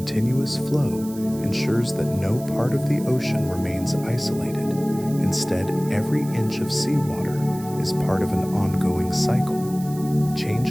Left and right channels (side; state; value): right; noise; hiss, 18 dB below the sound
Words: flow ensures that no part of the ocean remains isolated. Instead, every inch of seawater is part of an ongoing cycle.